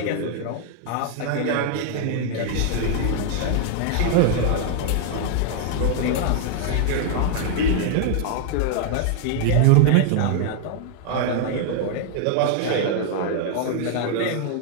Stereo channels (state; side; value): different; both; correlation 0.00